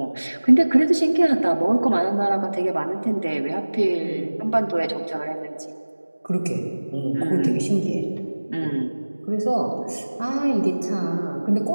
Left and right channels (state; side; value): inverted; both; correlation -1.00